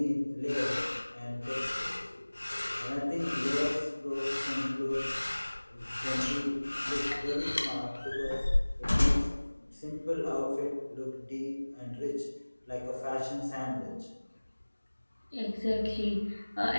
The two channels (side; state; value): both; inverted; correlation -1.00